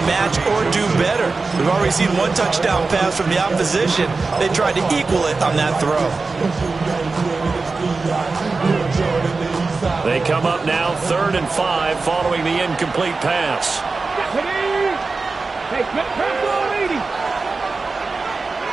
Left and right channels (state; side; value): quieter; left; 4.0 dB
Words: match or do better. We've already seen 1 touchdown pass from the opposition. They tried to equal it on that throw. They come up now 3rd and 5 following the incomplete pass. Hey, pass ball 80.